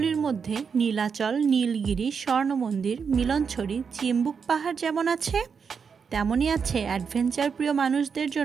মধ্যে নীলাচল, নীলগিরি, স্বর্ণ মন্দির, মিলনছড়ি, চিম্বুক পাহাড় যেমন আছে, তেমনই আছে অ্যাডভেঞ্চার প্রিয় মানুষদের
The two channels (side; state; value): left; quieter; 6.1 dB